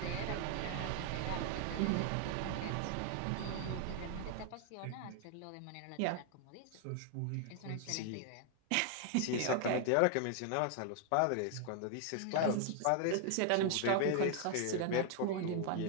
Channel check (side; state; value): both; different; correlation 0.00